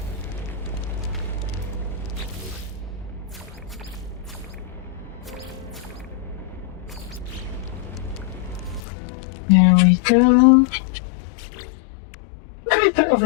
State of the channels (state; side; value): drops out; right; at 8.8 s